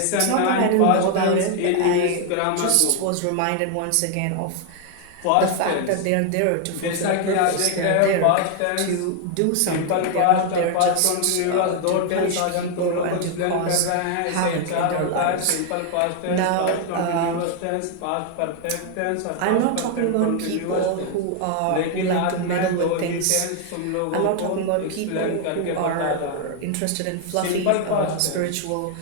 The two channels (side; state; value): both; different; correlation 0.00